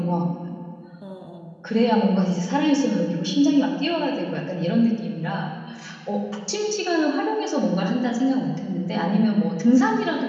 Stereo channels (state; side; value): identical; both; correlation 1.00